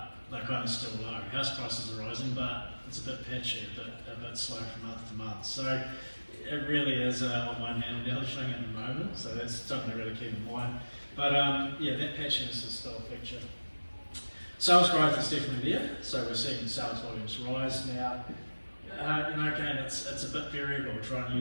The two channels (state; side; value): inverted; both; correlation -1.00